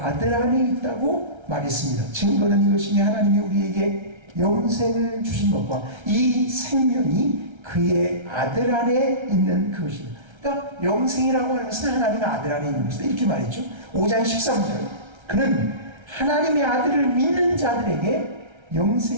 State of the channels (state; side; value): late; left; 1.3 ms